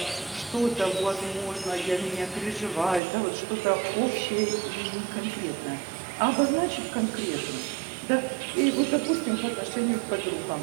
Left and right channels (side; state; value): left; drops out; at 3.0 s